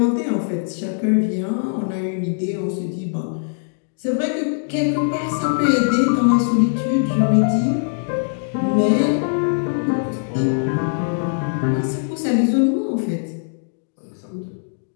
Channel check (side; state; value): right; silent; digital silence